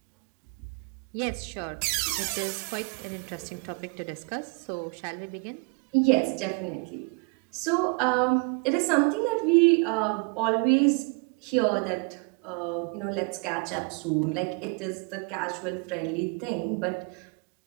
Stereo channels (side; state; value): left; quieter; 32.4 dB